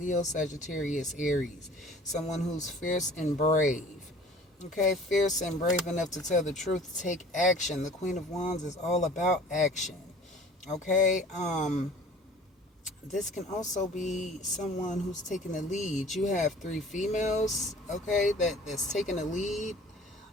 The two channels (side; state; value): both; normal; correlation 0.47